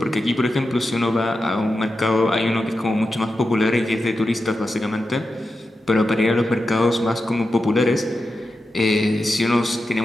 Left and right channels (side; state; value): both; normal; correlation 0.90